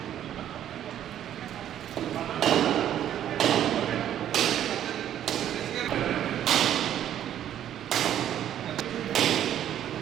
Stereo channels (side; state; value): left; quieter; 10.9 dB